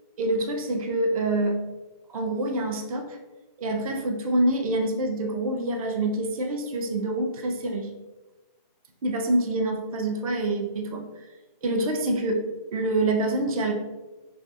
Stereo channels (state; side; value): inverted; both; correlation -0.44